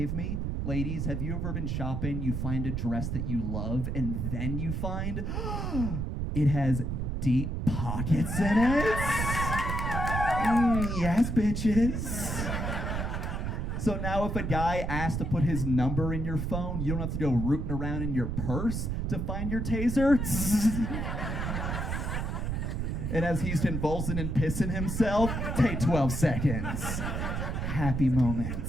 me. Ladies, have you ever been shopping, you find a dress that you love, and then you find it has deep pockets in it? Yes, bitches. So now if a guy asks to put his number in your phone, you don't have to go rooting around in your purse to find your taser. And as he's convulsing and pissing himself, take 12 seconds. Happy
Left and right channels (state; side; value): noise; right; rumble, 2 dB below the sound